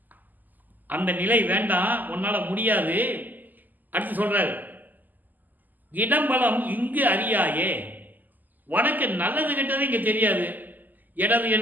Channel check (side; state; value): left; late; 0.085 ms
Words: அந்த நிலை வேண்டாம், உன்னால் முடியாது. அடுத்து சொல்கிறார், இடம்பலம் இங்கு அறியாயே, உனக்கு நல்லது கெட்டது இங்கே தெரியாது, இடது